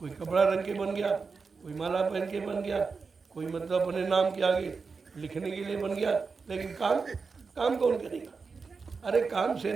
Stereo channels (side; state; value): left; quieter; 4.8 dB